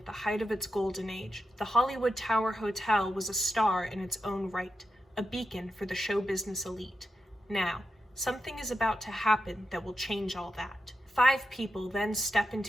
the height of its golden age, the Hollywood Tower Hotel was a star in its own right, a beacon for the show business elite. Now, something is about to happen that will change all that. 5 people then step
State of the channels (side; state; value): both; normal; correlation 0.88